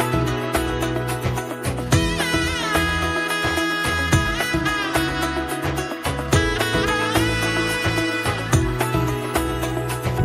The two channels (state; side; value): identical; both; correlation 1.00